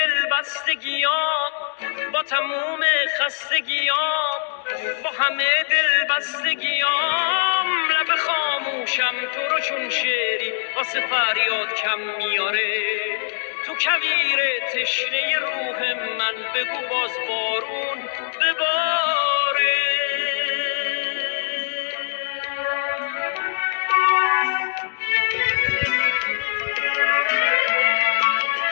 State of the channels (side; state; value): right; silent; digital silence